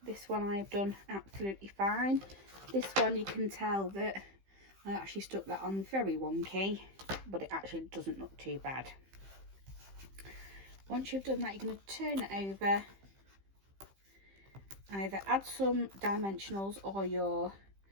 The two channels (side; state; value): left; late; 15 ms